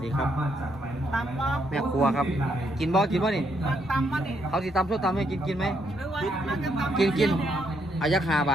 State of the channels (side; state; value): both; normal; correlation 0.75